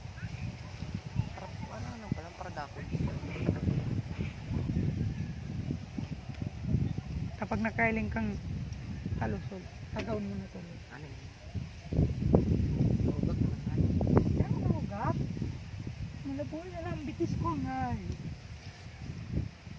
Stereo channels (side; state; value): both; identical; correlation 1.00